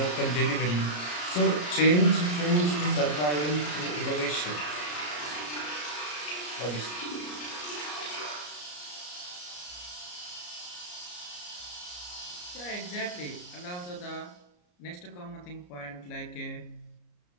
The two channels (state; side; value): late; right; 34 ms